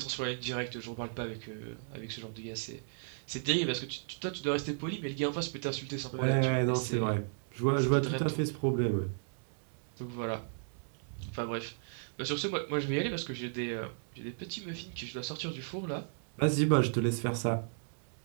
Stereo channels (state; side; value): silent; left; digital silence